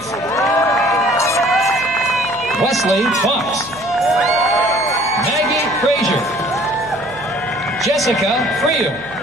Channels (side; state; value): right; noise; hum, 22 dB below the sound